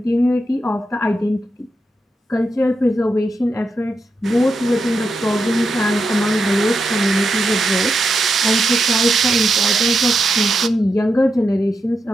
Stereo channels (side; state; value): both; normal; correlation 0.85